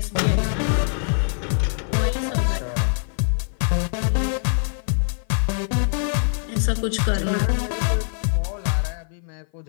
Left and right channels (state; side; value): silent; right; 56 dB below the other